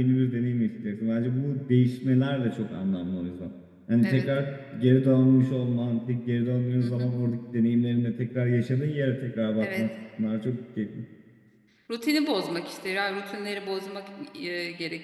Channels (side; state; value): both; identical; correlation 1.00